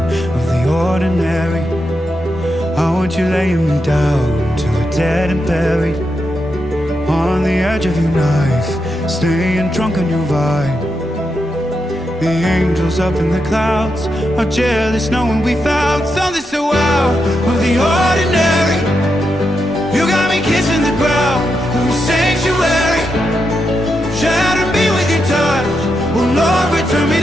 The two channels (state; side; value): normal; both; correlation 0.85